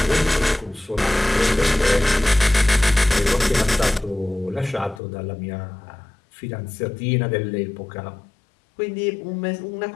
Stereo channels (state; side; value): drops out; right; at 5.0 s